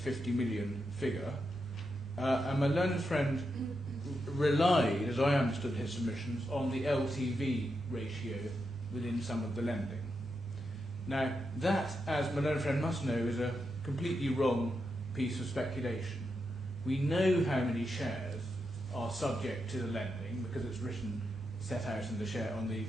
million figure. And my learned friend relied, as I understood his submissions, on the LTV ratio within some of the lending. Now, that, as my learned friend must know, is a completely wrong piece of speculation. We know how many shares are subject to the lending because it's set out in on the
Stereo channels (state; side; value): normal; both; correlation 0.86